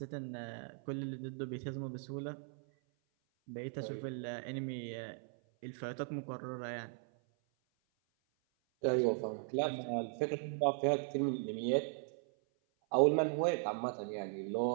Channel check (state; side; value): silent; left; 52 dB below the other